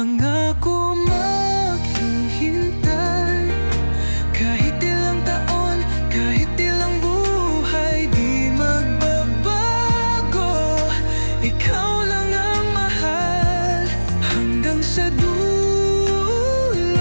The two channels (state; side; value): inverted; both; correlation -1.00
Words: maghihintay, kahit ilang taon, kahit ilang buhay, di magbabago. Ikaw lang ang mahal hanggang sa dulo.